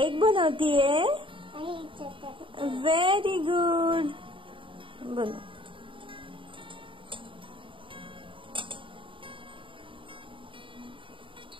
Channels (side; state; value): left; late; 0.25 ms